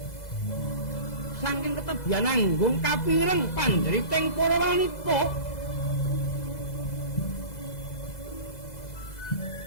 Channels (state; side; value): late; right; 2.0 ms